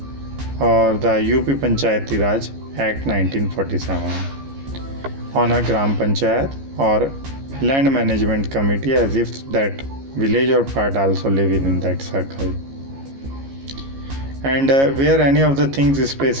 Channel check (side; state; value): left; late; 15 ms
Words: or the UP Panchayati Raj Act 1947 on a Gram Panchayat or land management committee, as if that village or part also live within that circle. And where any of the things is